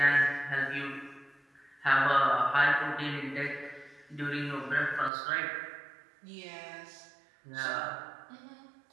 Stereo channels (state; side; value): drops out; left; at 5.1 s